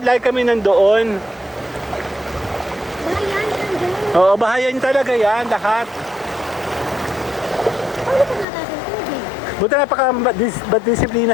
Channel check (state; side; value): drops out; right; at 8.5 s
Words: kami nandoon. Bayan, nandun. Oo, bahayan talaga yan, lahat. Ano pa natatang tubig? Buti napaka-disiplina